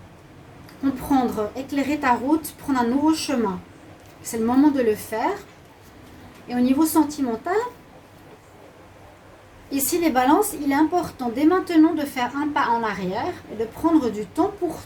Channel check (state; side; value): identical; both; correlation 1.00